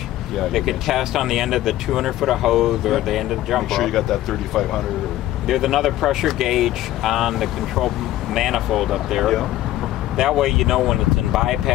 Yeah. They could test on the end of the 200-foot of hose or the end of the jump Make sure you rope. got that 3,500. There's another pressure gauge on the control manifold up there. Yeah. That way you know when it's in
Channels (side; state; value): right; quieter; 14.6 dB